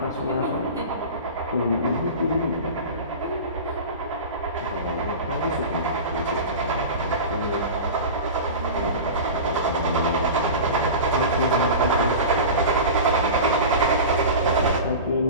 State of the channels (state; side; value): inverted; both; correlation -0.31